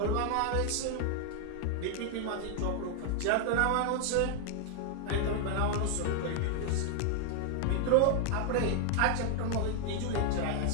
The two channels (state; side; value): different; both; correlation 0.00